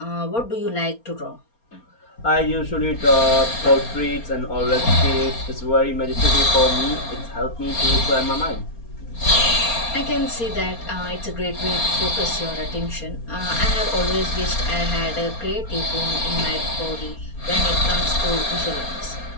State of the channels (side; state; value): right; late; 4.3 ms